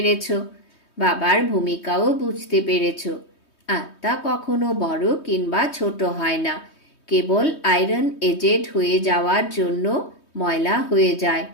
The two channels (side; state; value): right; late; 3.2 ms